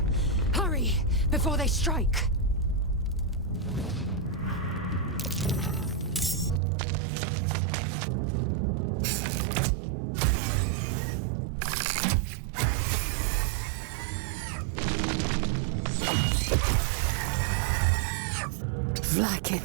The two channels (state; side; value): drops out; left; at 6.6 s